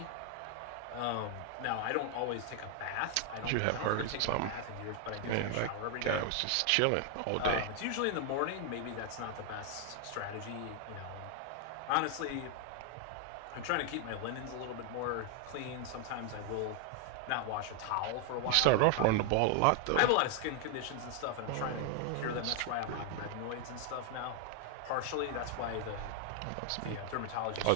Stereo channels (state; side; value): different; both; correlation 0.00